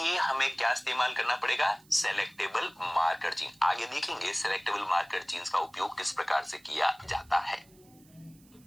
हमें क्या इस्तेमाल करना पड़ेगा? Selectable marker gene. आगे देखेंगे सेलेक्टेबल मार्कर जीन्स का उपयोग किस प्रकार से किया जाता है।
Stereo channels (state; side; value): noise; right; hiss, 28 dB below the sound